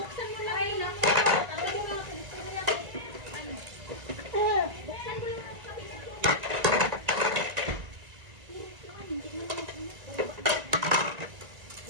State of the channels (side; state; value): left; late; 1.7 ms